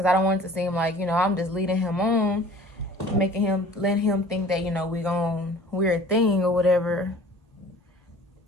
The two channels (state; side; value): normal; both; correlation 0.47